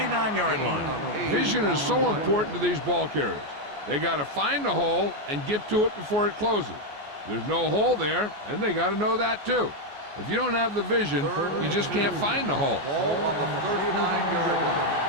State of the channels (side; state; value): left; late; 14 ms